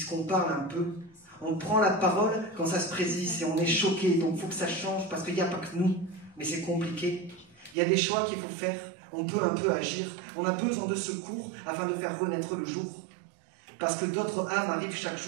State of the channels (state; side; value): drops out; left; at 7.8 s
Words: parle un peu. On prend la parole quand ça se présise et on est choqué. Donc il faut que ça change, parce qu'il n'y a pas que nous. Mais c'est compliqué. Il y a des choix qu'il faut faire. On peut un peu agir. On a besoin de secours afin de faire renaître le jour. Parce que d'autres âmes arrivent chaque